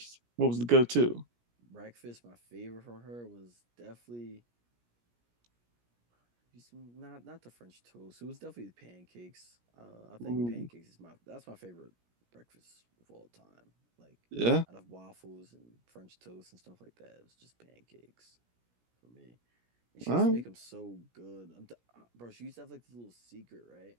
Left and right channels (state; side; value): late; left; 17 ms